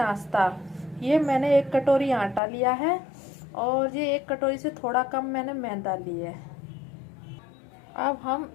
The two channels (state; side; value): drops out; right; at 2.4 s